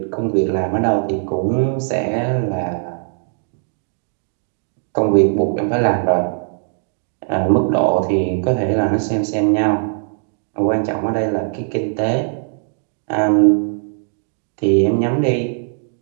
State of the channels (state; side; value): silent; left; 66 dB below the other